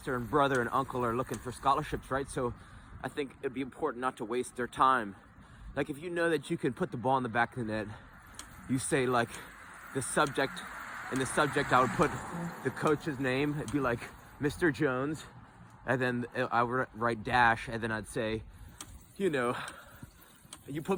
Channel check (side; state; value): both; identical; correlation 1.00